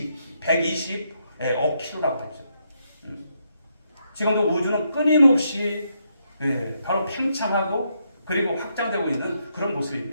킬로라고 하죠. 지금도 우주는 끊임없이 바로 팽창하고 그리고 확장되고 있는 그런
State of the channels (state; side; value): inverted; both; correlation -0.78